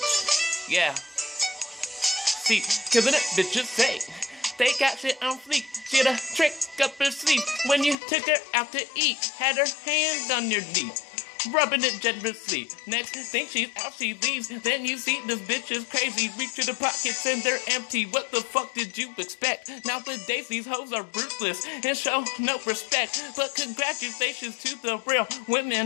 Yeah. See, killing it, bitches say. They got shit on fleek. She had a trick up her sleeve. When you took her out to eat, had her hand on your knee, rubbing it generously. Next thing she's out, she leaves. Then you see this bitch is crazy. Reach to the pockets and they're empty. What the fuck did you expect? Nowadays these hoes are ruthless and show no respect. But congratulations to the real women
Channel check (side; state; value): right; drops out; at 8.0 s